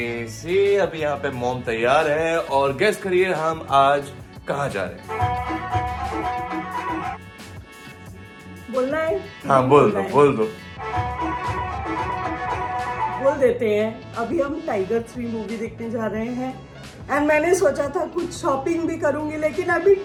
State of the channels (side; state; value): both; identical; correlation 1.00